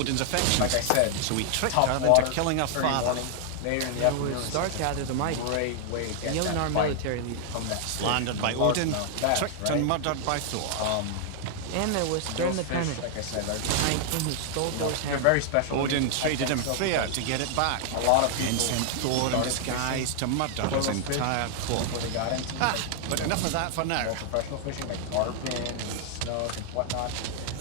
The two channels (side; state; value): both; different; correlation 0.00